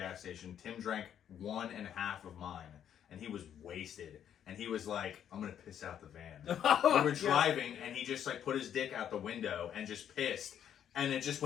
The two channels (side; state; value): right; quieter; 9.5 dB